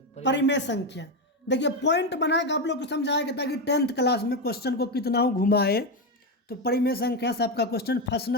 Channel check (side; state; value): both; normal; correlation 0.11